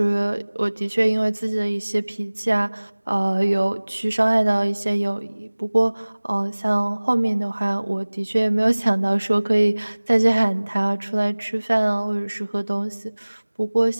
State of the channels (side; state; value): both; inverted; correlation -1.00